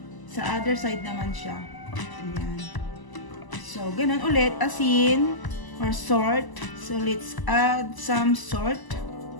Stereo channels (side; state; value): right; late; 1.0 ms